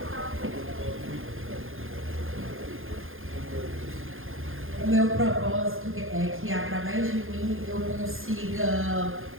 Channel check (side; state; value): left; late; 0.60 ms